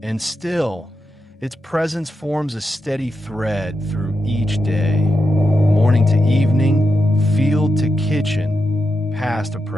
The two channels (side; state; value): both; normal; correlation 0.86